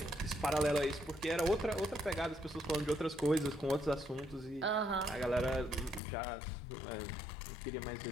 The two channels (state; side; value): drops out; right; at 6.0 s